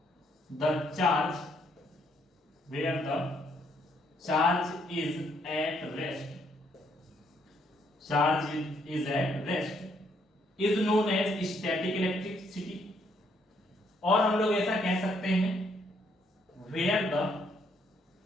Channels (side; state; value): both; normal; correlation 0.71